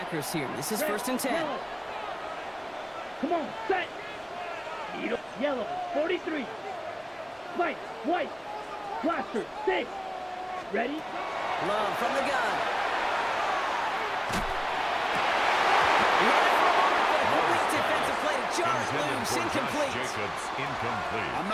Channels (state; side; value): identical; both; correlation 1.00